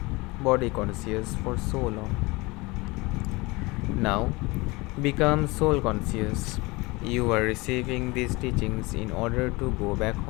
body conscious for so long. Now, become soul conscious. You are receiving these teachings in order to go back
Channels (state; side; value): quieter; right; 23.7 dB